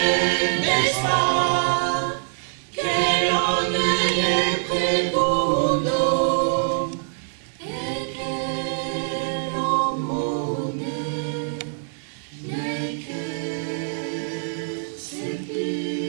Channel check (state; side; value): silent; left; 63 dB below the other